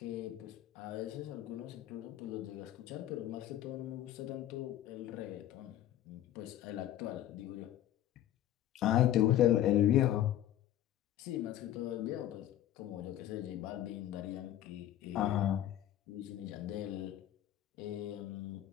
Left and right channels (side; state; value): right; quieter; 12.3 dB